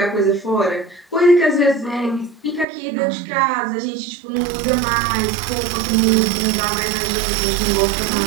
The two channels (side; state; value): left; drops out; at 2.7 s